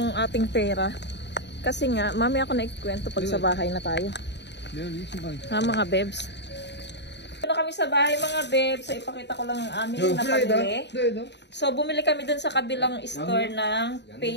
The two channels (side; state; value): right; late; 0.50 ms